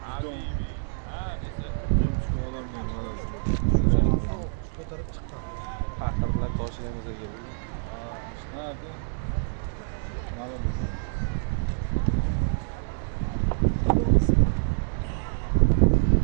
Paqirlar toshlaymiz aka.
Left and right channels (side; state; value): left; silent; digital silence